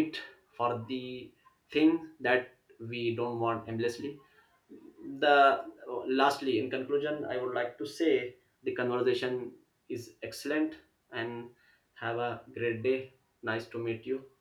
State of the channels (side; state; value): both; identical; correlation 1.00